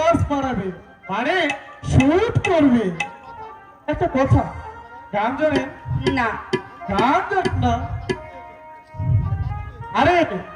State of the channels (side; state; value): both; identical; correlation 1.00